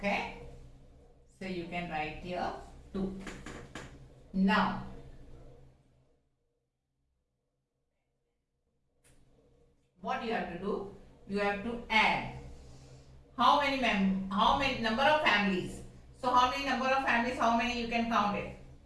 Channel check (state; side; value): identical; both; correlation 1.00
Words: So, you can write here 2. Now, what you have to do? You have to add how many number of families. So how many number of families, how many you can count it?